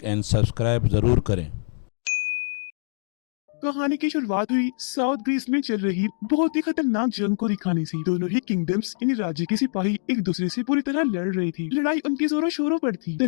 एंड सब्सक्राइब ज़रूर करें। कहानी की शुरुआत हुई साउथ ग्रीस में चल रही बहुत ही खतरनाक जंग को दिखाने से। दोनों ही किंगडम्स यानी राज्य के सिपाही एक दूसरे से पूरी तरह लड़ रही थी। लड़ाई उनकी जोरों शोरों पर थी।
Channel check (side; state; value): right; silent; digital silence